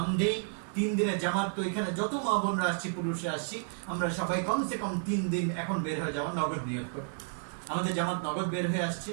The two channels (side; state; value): left; silent; 57 dB below the other